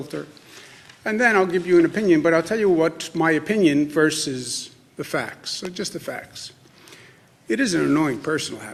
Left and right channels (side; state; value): both; identical; correlation 1.00